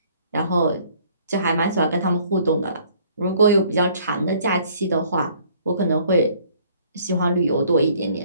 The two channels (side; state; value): both; inverted; correlation -0.59